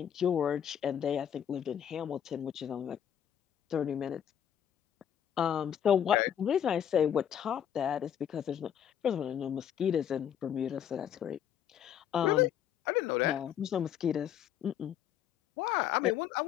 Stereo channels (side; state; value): right; quieter; 9.4 dB